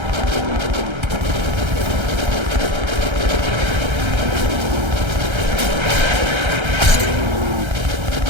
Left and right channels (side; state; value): left; late; 1.3 ms